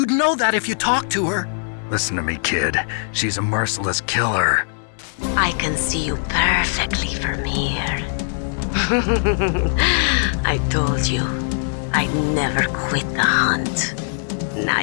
know that if you talked to her. Listen to me, kid. She's a merciless killer. I can see you perfectly from here. I told you, I'd never quit the hunt. Now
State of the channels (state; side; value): silent; right; 65 dB below the other